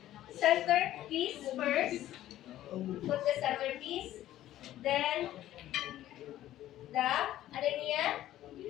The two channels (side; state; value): right; quieter; 13.5 dB